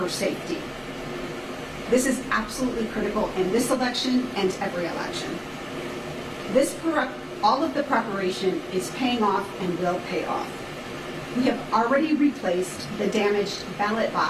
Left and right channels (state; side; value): identical; both; correlation 1.00